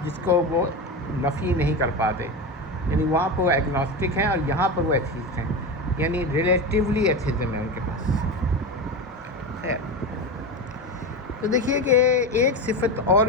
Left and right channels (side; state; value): both; normal; correlation 0.21